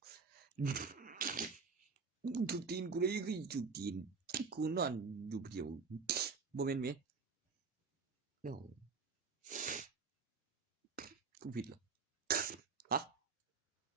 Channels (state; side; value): quieter; left; 5.1 dB